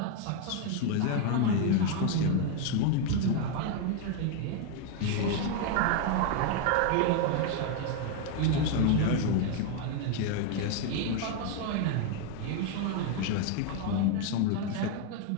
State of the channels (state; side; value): different; both; correlation 0.01